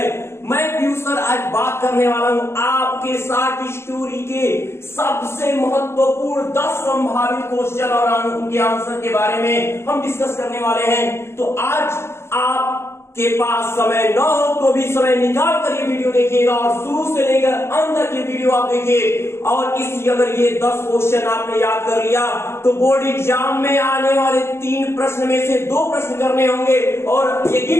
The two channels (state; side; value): late; right; 0.12 ms